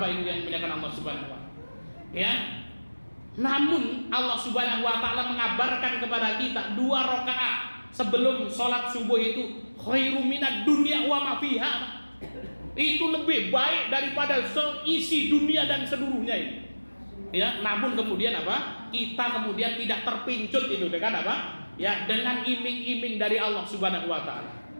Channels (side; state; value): both; inverted; correlation -1.00